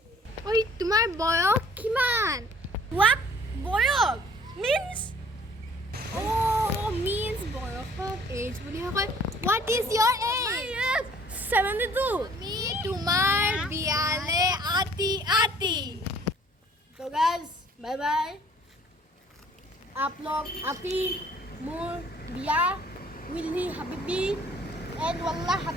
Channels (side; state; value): both; normal; correlation 0.55